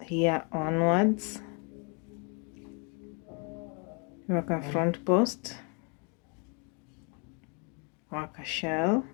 here onwards. Work a front post, work a shell,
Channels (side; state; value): right; quieter; 35.9 dB